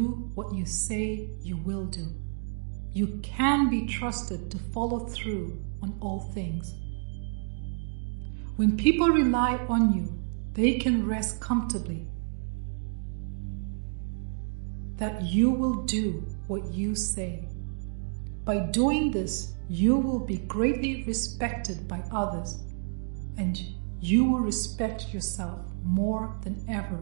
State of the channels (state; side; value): silent; left; digital silence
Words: what you say you will do. You can be trusted to follow through on all things. When people rely on you, they can rest comfortably that you will do what you say. By doing this, you will be greatly respected by others, and you will respect yourself more than ever